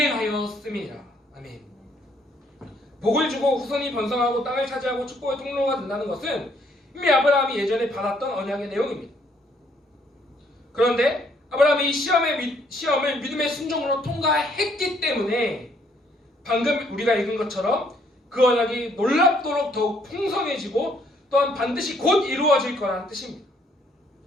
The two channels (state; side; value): normal; both; correlation 0.67